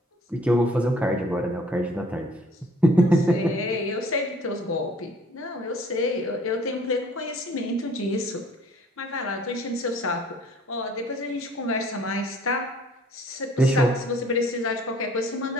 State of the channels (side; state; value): both; normal; correlation 0.55